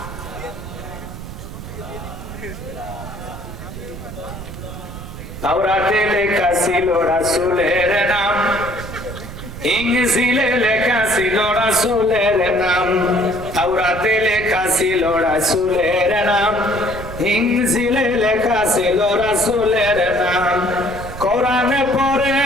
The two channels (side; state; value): right; noise; rumble, 11 dB below the sound